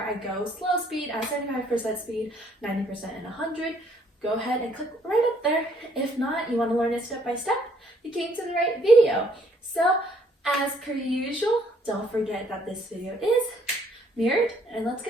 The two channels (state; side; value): normal; both; correlation 0.65